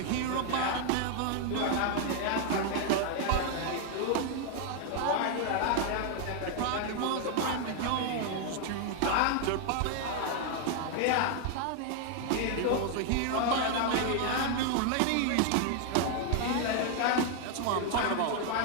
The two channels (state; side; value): different; both; correlation 0.00